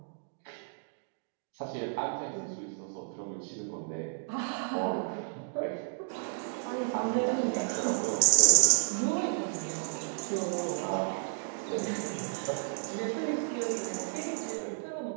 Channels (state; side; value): silent; left; digital silence